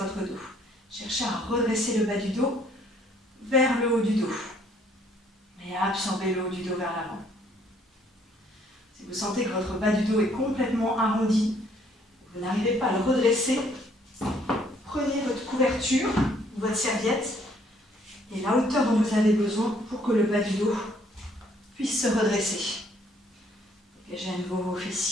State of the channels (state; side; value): normal; both; correlation 0.64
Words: dos. Cherchez à redresser le bas du dos vers le haut du dos et à absorber le haut du dos vers l'avant. Si vous sentez que votre bas du dos est complètement arrondi, vous n'arrivez pas à le redresser, prenez votre couverture, votre serviette et la hauteur dont vous avez besoin pour que le bas du dos puisse se redresser. Dégagez à nouveau vos